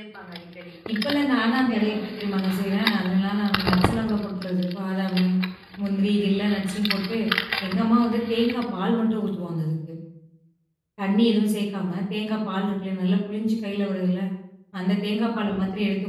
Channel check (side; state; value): both; identical; correlation 1.00